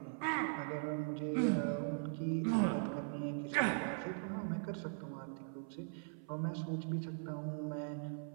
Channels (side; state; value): left; silent; 51 dB below the other